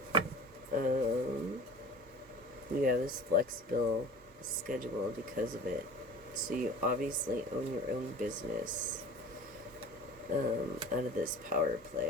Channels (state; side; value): normal; both; correlation 0.39